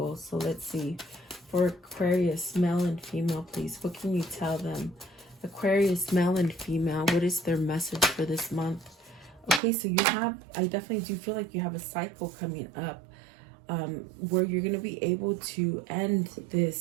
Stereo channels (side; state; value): left; drops out; at 9.6 s